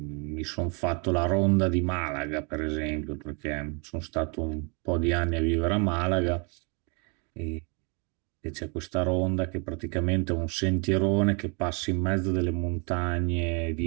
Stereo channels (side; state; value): left; quieter; 34.2 dB